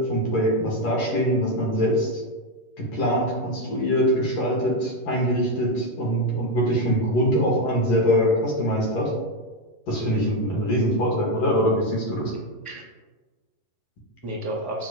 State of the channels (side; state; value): right; late; 11 ms